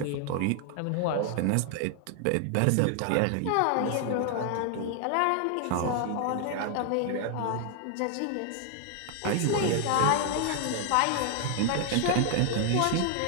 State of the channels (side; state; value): both; different; correlation 0.00